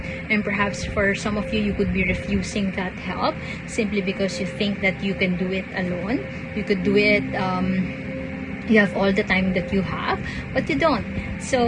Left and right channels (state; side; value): identical; both; correlation 1.00